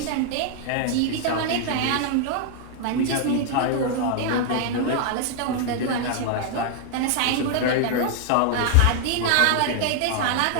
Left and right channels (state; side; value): different; both; correlation 0.00